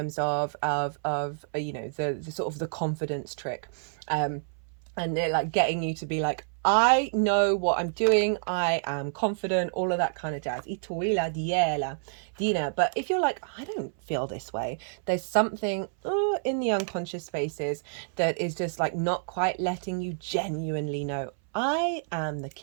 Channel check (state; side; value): silent; left; 59 dB below the other